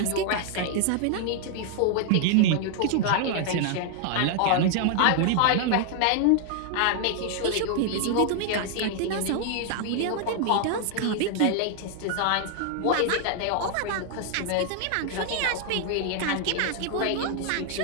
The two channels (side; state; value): both; different; correlation 0.00